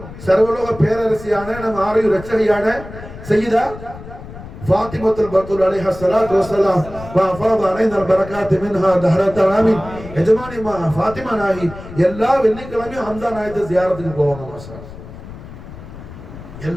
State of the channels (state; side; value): noise; left; rumble, 14 dB below the sound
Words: சர்வலோக பேரரசியான நம்ம ஆரையும் ரட்சகையான சையதா ஃபாத்திமத்துல் பத்தூல் அலைஹா ஸலாத்து வஸலாம் வஃபாத அலைனா பரக்காத் மின்ஹா தஹரத் ஆமீன். எஜமானி ஃபாத்திமா நாயகி எல்லா வெள்ளிக்கிழமையும் ஹம்ஸா நாயகத்தை ஜியாரத்துக்கு போவாங்க. மாஷா,